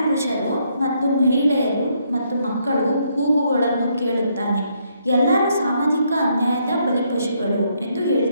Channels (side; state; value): both; inverted; correlation -0.73